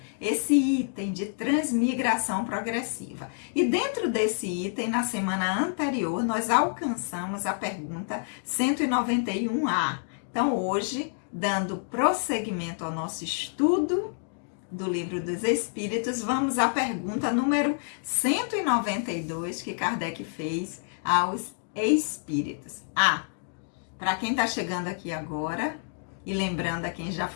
esse item de transmigração progressiva. E dentro desse item, na semana anterior, nós alcançamos a pergunta 191A. Então, hoje, dando prosseguimento ao nosso estudo do Livro dos Espíritos, vamos à pergunta número 192 que Kardec fez aos espíritos. Para quem está chegando aqui agora, e lembrando a quem já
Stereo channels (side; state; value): right; silent; digital silence